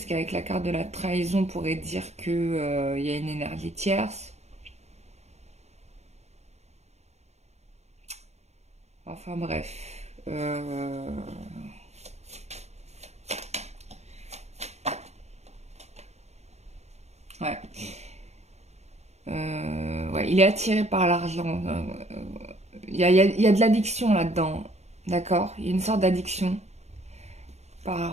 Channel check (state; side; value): late; left; 0.32 ms